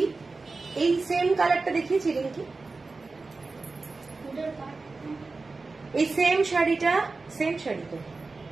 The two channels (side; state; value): left; quieter; 3.8 dB